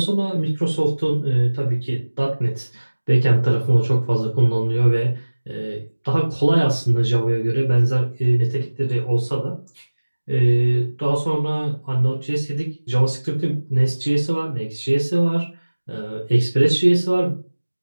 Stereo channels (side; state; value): both; inverted; correlation -1.00